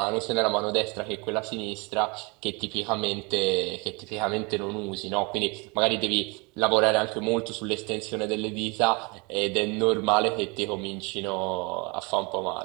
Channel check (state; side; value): quieter; left; 29.3 dB